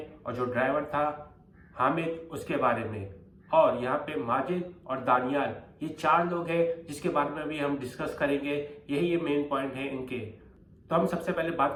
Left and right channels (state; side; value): identical; both; correlation 1.00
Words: और जो ड्राइवर था हामिद उसके बारे में। और यहाँ पे माजिद और दानियाल ये 4 लोग हैं जिसके बारे में भी हम डिस्कस करेंगे। यही ये मेन पॉइंट है इनके। तो हम सबसे पहले बात